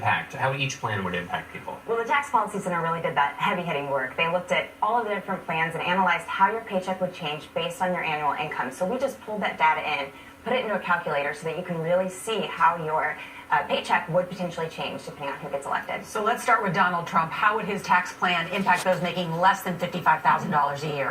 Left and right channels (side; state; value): both; identical; correlation 1.00